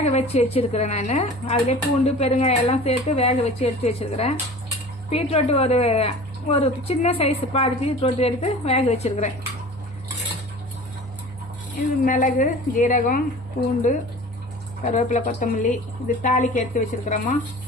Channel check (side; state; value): both; normal; correlation 0.40